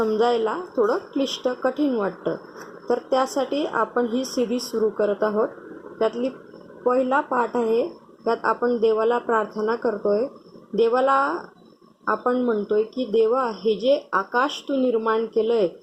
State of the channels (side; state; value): both; identical; correlation 1.00